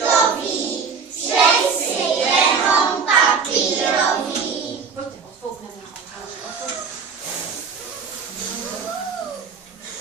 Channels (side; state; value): left; quieter; 5.6 dB